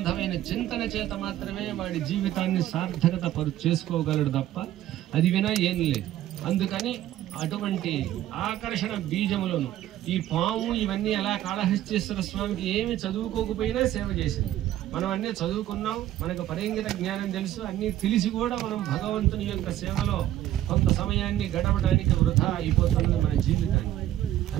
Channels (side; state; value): left; quieter; 13.1 dB